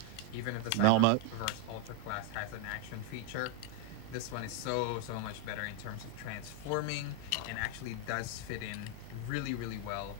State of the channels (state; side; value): different; both; correlation 0.01